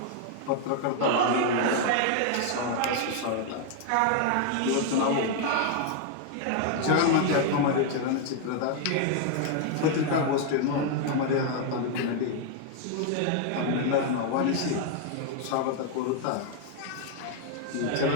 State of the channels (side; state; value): both; different; correlation 0.00